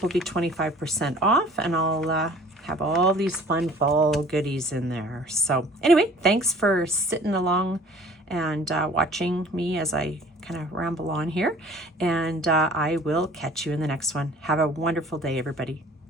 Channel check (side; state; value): both; normal; correlation 0.50